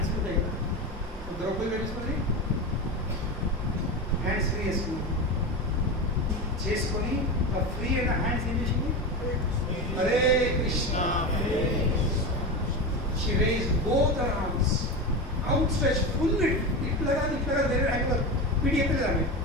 free ఉంటాయి కదా, ద్రౌపది తెలుసుకుంది, హ్యాండ్స్ ఫ్రీ చేసుకొని ఆ ఫ్రీ అయిన హ్యాండ్స్ ఏం చేసింది? Hare Krishna. She raised both her arms, outstretched, full it. ఇట్లా కాదు వేరే హ్యాండ్ పిడి ఎత్తలేదు ఆమె.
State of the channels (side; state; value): both; normal; correlation 0.21